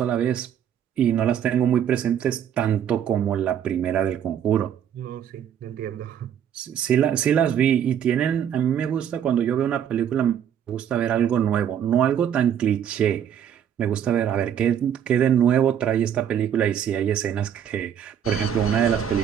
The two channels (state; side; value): quieter; left; 9.2 dB